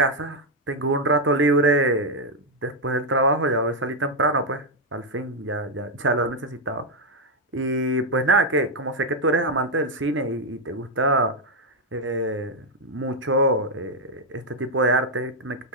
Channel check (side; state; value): both; normal; correlation 0.01